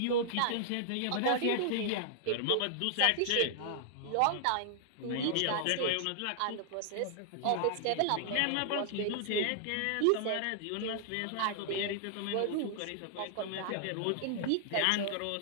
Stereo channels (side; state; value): both; different; correlation -0.01